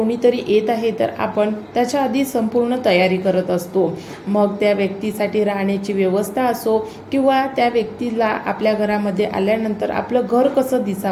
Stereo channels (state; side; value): identical; both; correlation 1.00